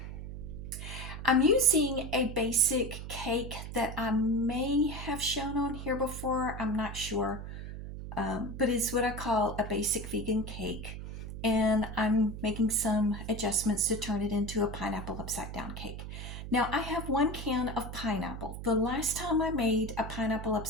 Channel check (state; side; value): noise; right; hum, 8 dB below the sound